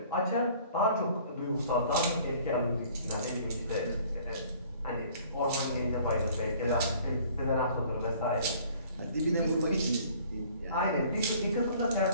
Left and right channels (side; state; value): both; inverted; correlation -0.54